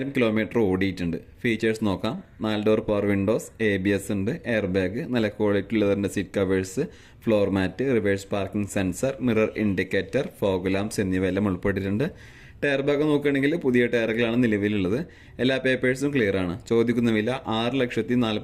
കിലോമീറ്റർ ഓടിയിട്ടുണ്ട്. ഫീച്ചേഴ്സ് നോക്കാം. 4 ഡോർ പവർ വിൻഡോസ്, ABS ഉണ്ട്, എയർ ബാഗ്, നല്ല ക്വാളിറ്റി ലെതറിന്റെ seat covers, floor mat, reverse parking sensor, mirror indicator, fog lamps എന്നിവയെല്ലാം ഉൾപ്പെട്ടിട്ടുണ്ട്. ടയർ ഭാഗം നോക്കുകയാണെങ്കിൽ പുതിയ ടയറുകളാണ് നിലവിലുള്ളത്. എല്ലാ പേപ്പേഴ്സും ക്ലിയർ ആണ്. ചോദിക്കുന്ന വില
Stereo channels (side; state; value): both; identical; correlation 1.00